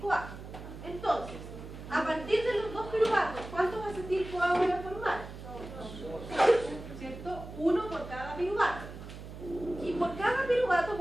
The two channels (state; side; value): noise; right; hum, 12 dB below the sound